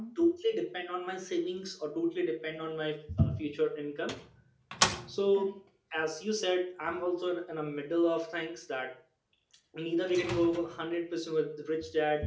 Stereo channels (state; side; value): identical; both; correlation 1.00